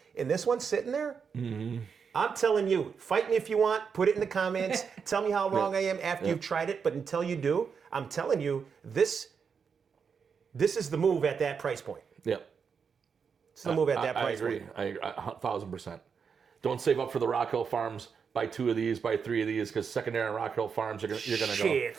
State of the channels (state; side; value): quieter; left; 6.2 dB